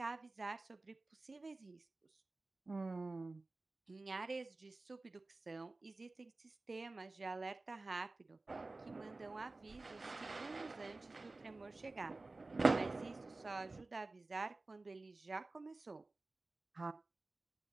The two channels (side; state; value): left; quieter; 3.3 dB